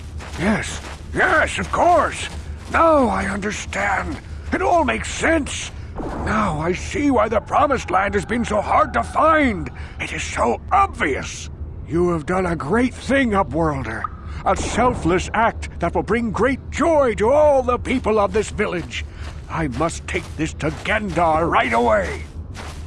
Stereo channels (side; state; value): both; identical; correlation 1.00